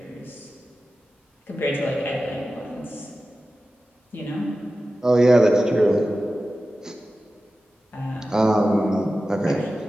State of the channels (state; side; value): normal; both; correlation 0.94